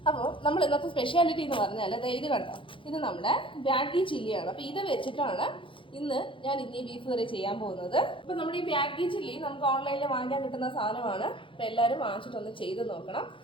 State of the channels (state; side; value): late; right; 0.25 ms